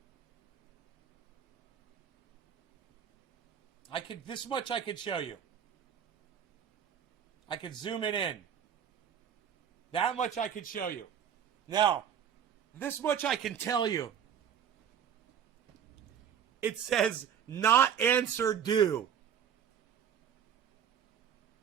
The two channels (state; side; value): quieter; left; 8.6 dB